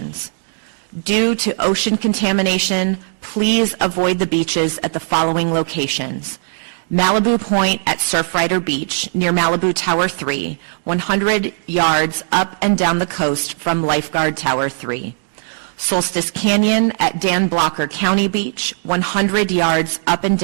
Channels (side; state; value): left; silent; digital silence